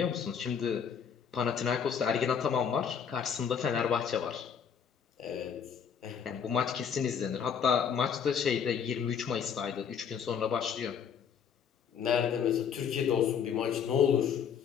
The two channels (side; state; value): right; quieter; 7.4 dB